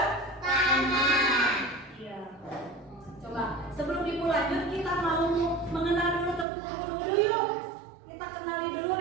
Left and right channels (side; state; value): left; drops out; at 6.5 s